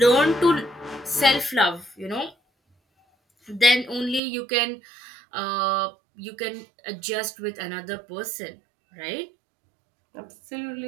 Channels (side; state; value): left; drops out; at 4.2 s